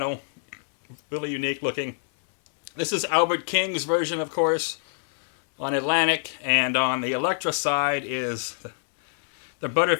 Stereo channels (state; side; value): silent; right; digital silence